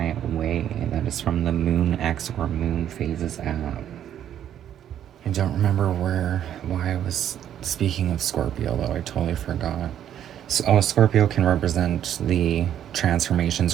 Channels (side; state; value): left; quieter; 10.3 dB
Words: way. That is from the Moon X or Moon Phases app. I don't remember why I was speaking of Scorpio, though. I totally forgot. So, Scorpio can represent the transformations